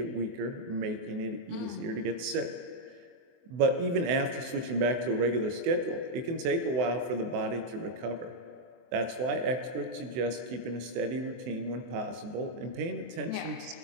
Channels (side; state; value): left; late; 24 ms